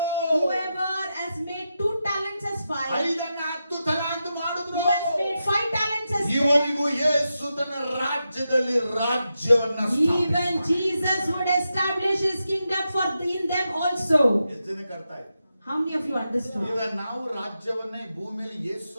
Whoever has made 2 talents as 5, 5 10 ತಲಾಂತ ಮಾಡಿದ್ರು, who has made 5 talents as 10, ಇವರಿಗೂ ಯೇಸು ತನ್ನ ರಾಜ್ಯದಲ್ಲಿ ರಾಜ್ಯವನ್ನ even Jesus would establish his kingdom for in them also. ಎಷ್ಟು ಜನಕ್ಕೆ ಅರ್ಥ ಆಯ್ತು? How many of you understood? ಈಗ ನಾವು ರಾಜ್ಯವನ್ನ ಈ ಭೂಮಿಯಲ್ಲಿ ಯೇಸು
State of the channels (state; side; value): inverted; both; correlation -0.88